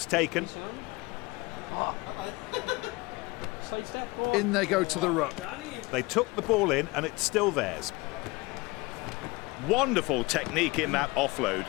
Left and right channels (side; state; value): right; quieter; 23.5 dB